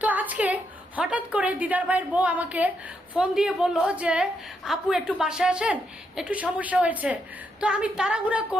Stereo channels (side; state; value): both; normal; correlation 0.79